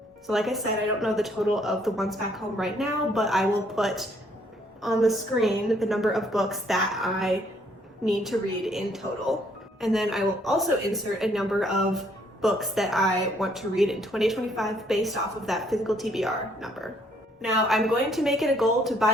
So like I said, I don't know the total of the ones back home right now, but I will put on the screen the number of books that I need to read in total. And then I will also insert a number of books that I want to read in 2025 based off of that physical TBR number. Now, I'm going to make it a goal to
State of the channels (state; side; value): normal; both; correlation 0.66